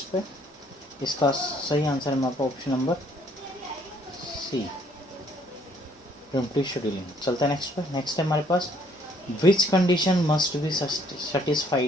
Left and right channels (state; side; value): normal; both; correlation 0.63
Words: पे। इसका सही आंसर है हमारे पास option number C, primitive scheduling. चलते हैं नेक्स्ट पे। नेक्स्ट है हमारे पास, which condition must be